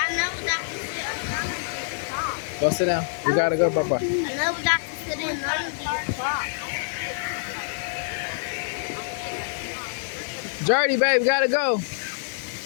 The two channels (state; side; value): silent; right; digital silence